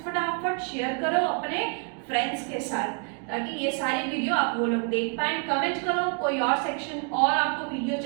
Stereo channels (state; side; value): quieter; left; 37.5 dB